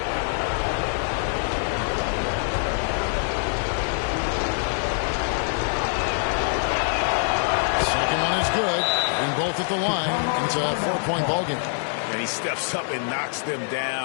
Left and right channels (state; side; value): silent; right; digital silence